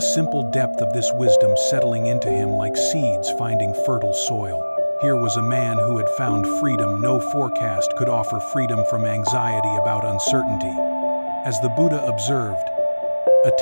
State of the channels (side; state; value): both; inverted; correlation -1.00